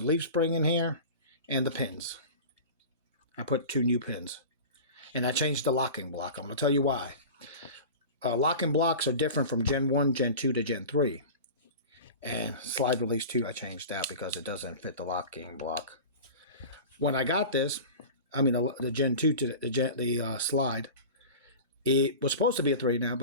leaf spring in here and the pins. I put 2 new pins. And I changed the locking block. I'm going to tell you why. Locking blocks are different from Gen 1, Gen 2 to Gen 3. And slide release 2 I changed out because it doesn't fit the locking block. When I got this, the Gen 2 to the slide, it was supposed to be a 3 now,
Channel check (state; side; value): inverted; both; correlation -0.34